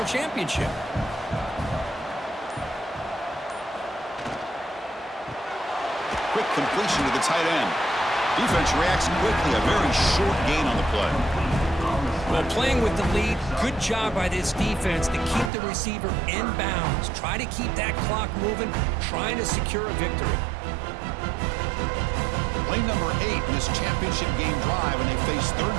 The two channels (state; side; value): drops out; left; at 15.5 s